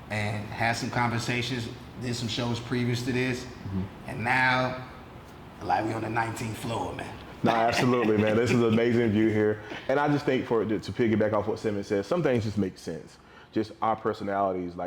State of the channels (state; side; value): identical; both; correlation 1.00